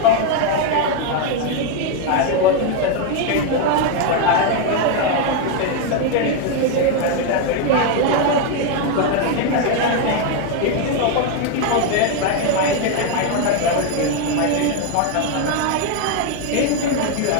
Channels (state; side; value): different; both; correlation 0.01